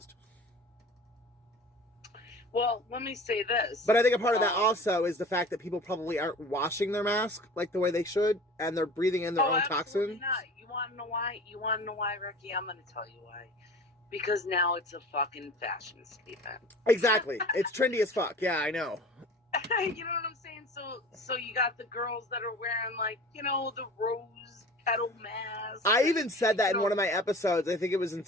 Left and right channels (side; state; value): both; normal; correlation 0.40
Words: Well, let me say this. But I think a part of that also is the fact that people probably aren't washing their mask like the way they should, and they're breathing in their own toxins. Not. You want to know why? Ricky? I'm going to tell you why. Because now it's a fucking fashion statement. Exactly. It's trendy as fuck. Yeah, I know. You know what I'm saying? So you got the girls that are wearing, like, you know, the rose petal mask. I even said that in one of my episodes. I think it was in